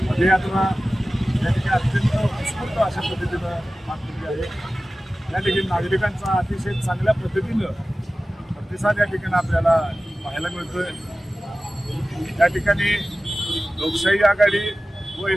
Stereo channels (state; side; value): normal; both; correlation 0.96